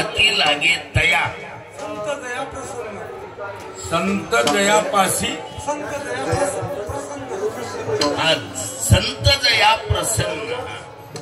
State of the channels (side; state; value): both; identical; correlation 1.00